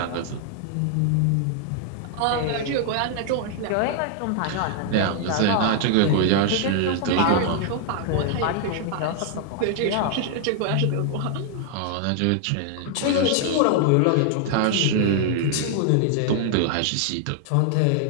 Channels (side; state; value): both; different; correlation 0.00